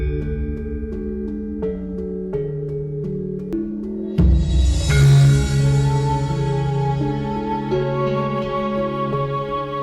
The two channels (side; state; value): both; identical; correlation 1.00